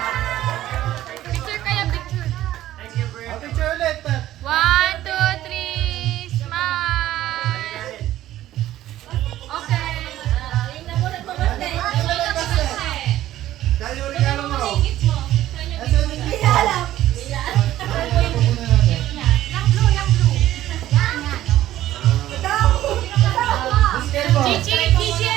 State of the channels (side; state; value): left; quieter; 13.7 dB